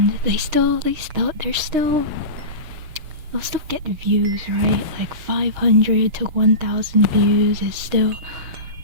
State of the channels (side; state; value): left; late; 6.5 ms